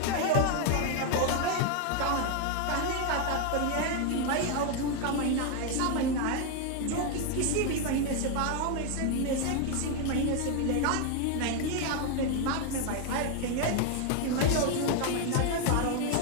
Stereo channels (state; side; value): different; both; correlation 0.01